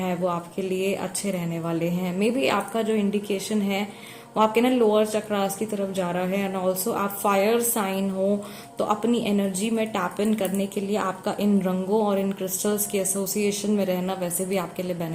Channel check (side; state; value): both; identical; correlation 1.00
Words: वो आपके लिए अच्छे रहने वाले हैं। मे बी आपका जो इंडिकेशन है वो आपके ना लोअर चक्रास की तरफ जा रहा है, एंड ऑल्सो आप फायर साइन हो तो अपनी एनर्जी में टैप इन करने के लिए आपका इन रंगों और इन क्रिस्टल्स के एसोसिएशन में रहना वैसे भी आपके लिए